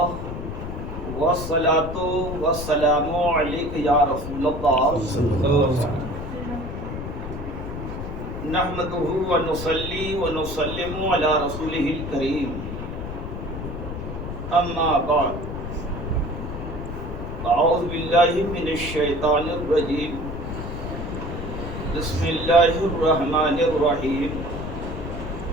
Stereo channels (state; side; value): noise; left; rumble, 7 dB below the sound